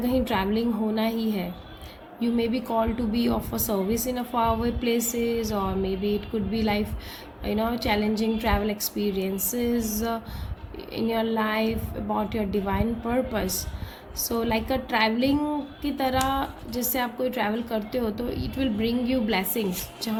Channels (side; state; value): both; identical; correlation 1.00